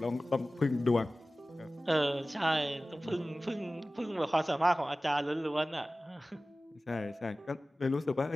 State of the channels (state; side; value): normal; both; correlation 0.97